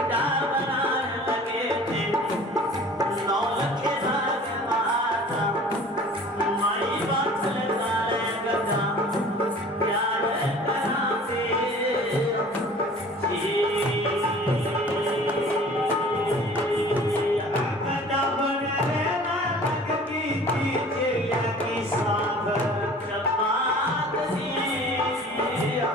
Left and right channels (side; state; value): both; normal; correlation 0.46